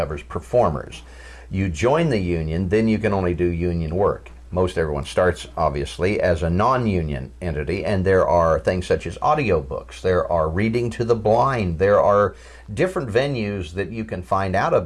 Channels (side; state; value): both; identical; correlation 1.00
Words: performers. You join the union, then you can only do union work. Most everyone starts, obviously, as a non-union entity, and there are things such as audiobooks, there are reading to the blind, there are different venues that you can find out